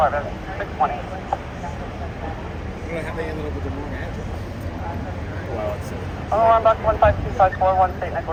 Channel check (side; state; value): both; identical; correlation 1.00